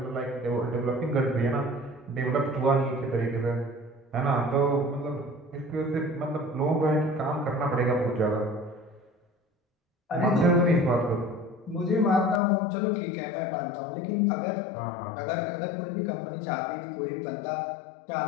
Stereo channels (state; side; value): drops out; right; at 12.4 s